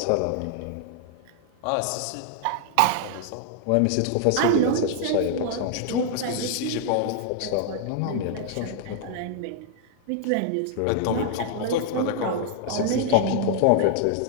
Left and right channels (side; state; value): both; different; correlation -0.01